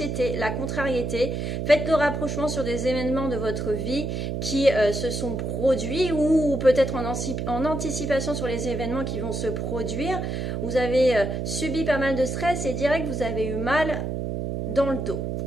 la contrariété. Faites le rapprochement sur des événements de votre vie qui se sont produits ou peut-être en anticipation sur les événements qui vont se produire. Vous avez subi pas mal de stress et direct vous avez eu mal dans le dos,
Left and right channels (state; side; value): noise; right; hum, 3 dB below the sound